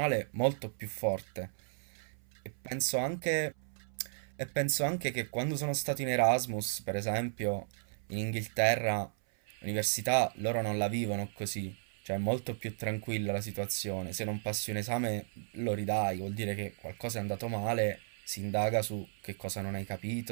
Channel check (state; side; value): silent; left; 55 dB below the other